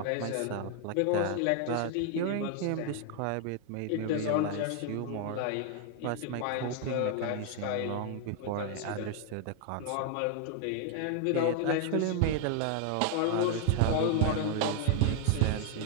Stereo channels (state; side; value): different; both; correlation 0.00